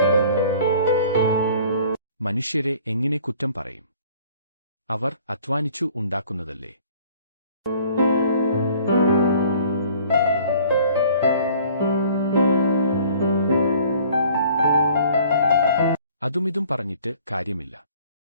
മനുഷ്യരെ എങ്ങനെ കുറ്റം പറയും? അവർ അധ്വാനിച്ചു ഉണ്ടാക്കുന്നതല്ലേ. അതുമിതും പറഞ്ഞിട്ട് കാര്യമില്ല.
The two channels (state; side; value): inverted; both; correlation -0.53